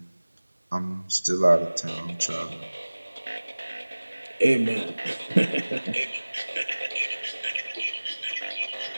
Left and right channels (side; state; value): both; inverted; correlation -1.00